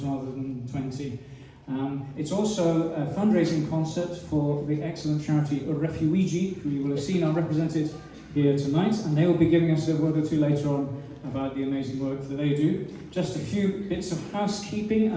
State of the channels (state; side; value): identical; both; correlation 1.00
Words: than 20. It's also a fundraising concert for the excellent charity Refuigi, who you will have seen are represented here tonight, and they will be giving us a word or two later on about the amazing work that they do. Just a few bits of housekeeping,